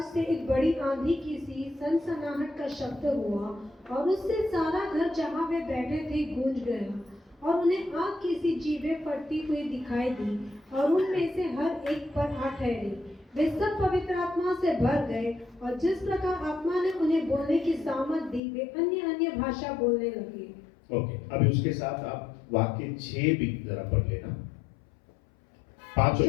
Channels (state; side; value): drops out; right; at 18.4 s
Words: से एक बड़ी आंधी की सी सनसनाहट का शब्द हुआ और उससे सारा घर जहाँ वे बैठे थे गूंज गया और उन्हें आग की सी जीभें फटती हुई दिखाई दी और उनमें से हर एक पर आ ठहरी। वे सब पवित्र आत्मा से भर गए और जिस प्रकार आत्मा ने उन्हें बोलने की सामर्थ दी वे अन्य अन्य भाषा बोलने लगे। ओके, अभी उसके साथ आप वाक्य 6 भी जरा पढ़ लेना। 5 और